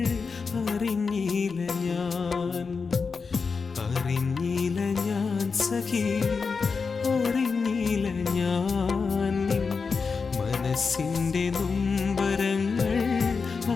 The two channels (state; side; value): quieter; right; 5.0 dB